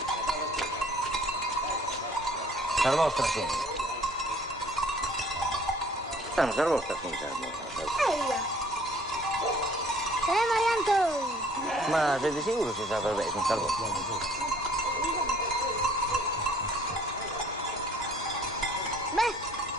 Sar vostra, sì. Non sar vostra, sì, Eia! Marianto! Ma sei di sicuro si sa per me, non sar vostra?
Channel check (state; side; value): normal; both; correlation 0.56